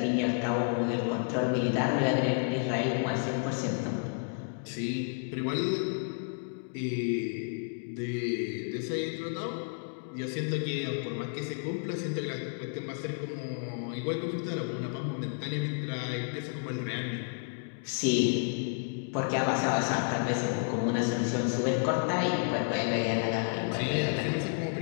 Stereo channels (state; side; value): quieter; right; 38.2 dB